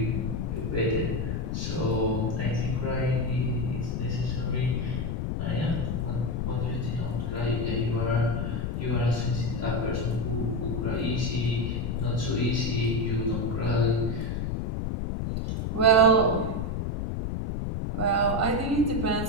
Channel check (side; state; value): left; noise; rumble, 1 dB below the sound